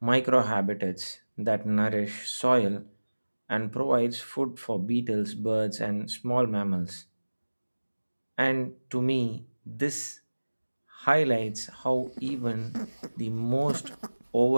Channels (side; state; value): both; inverted; correlation -1.00